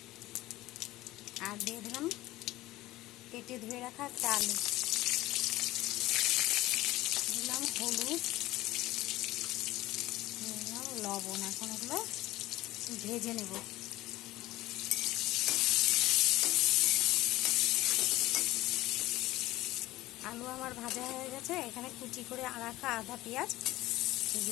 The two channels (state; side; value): quieter; right; 17.5 dB